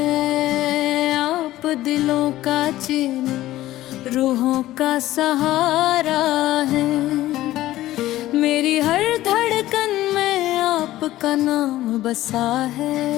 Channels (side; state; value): right; quieter; 15.3 dB